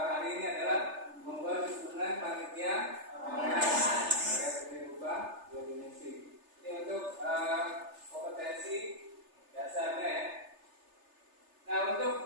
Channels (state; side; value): late; left; 3.3 ms